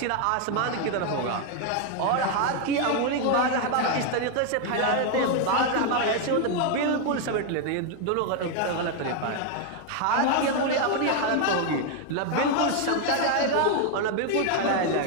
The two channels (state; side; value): different; both; correlation 0.01